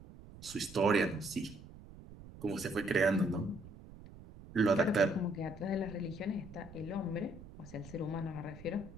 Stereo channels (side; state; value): right; noise; rumble, 17 dB below the sound